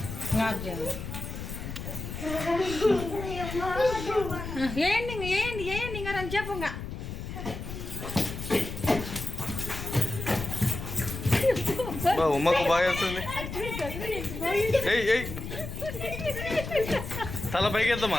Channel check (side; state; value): left; noise; rumble, 7 dB below the sound